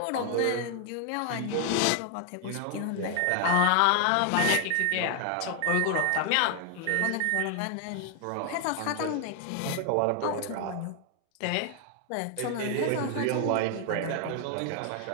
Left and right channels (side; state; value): both; different; correlation 0.00